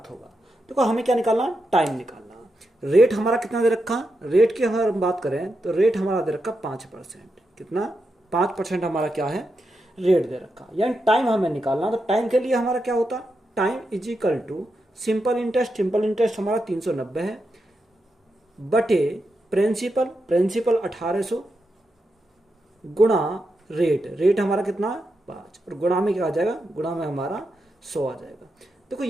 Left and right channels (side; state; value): both; normal; correlation 0.86